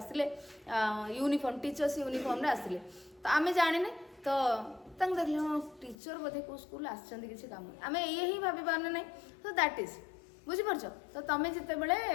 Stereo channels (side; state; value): right; drops out; at 6.0 s